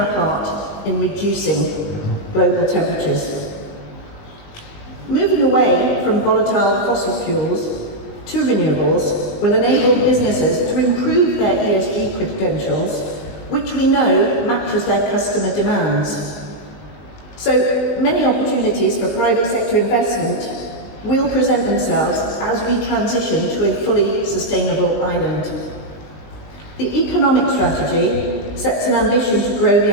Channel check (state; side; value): late; right; 19 ms